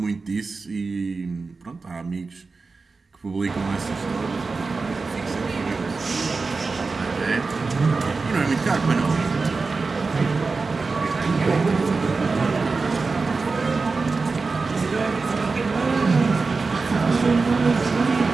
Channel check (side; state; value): left; quieter; 4.2 dB